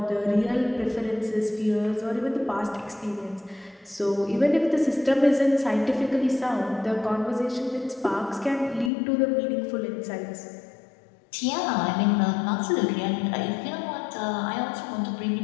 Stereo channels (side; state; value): right; drops out; at 8.9 s